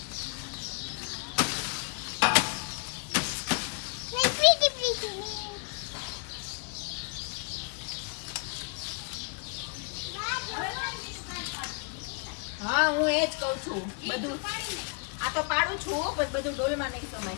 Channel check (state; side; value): quieter; right; 36.4 dB